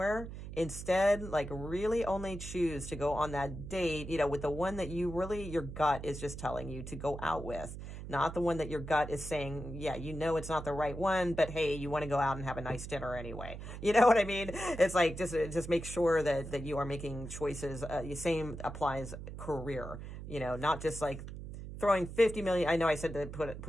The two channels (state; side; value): noise; right; hum, 10 dB below the sound